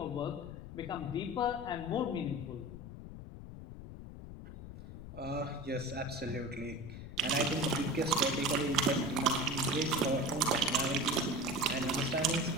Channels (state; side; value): noise; left; rumble, 12 dB below the sound